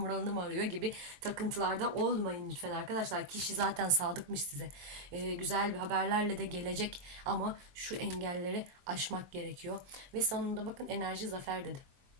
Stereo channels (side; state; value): left; late; 23 ms